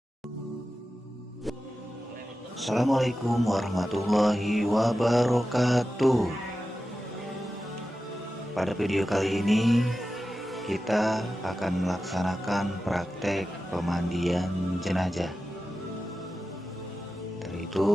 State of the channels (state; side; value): normal; both; correlation 0.93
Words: warahmatullahi wabarakatuh. Pada video kali ini kita akan melaksanakan praktek pemandian jenazah. Dari